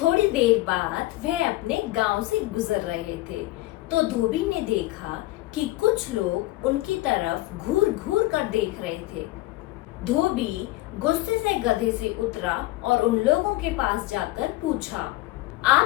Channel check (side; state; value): right; quieter; 18.2 dB